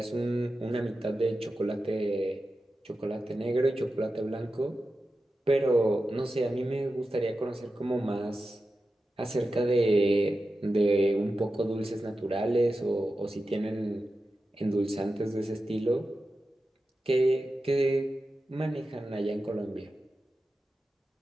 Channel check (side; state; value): both; normal; correlation 0.92